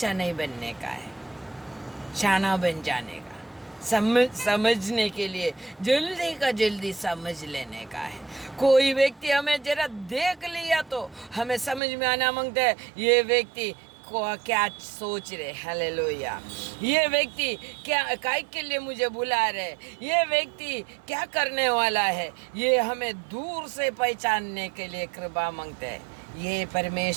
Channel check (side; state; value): left; drops out; at 11.8 s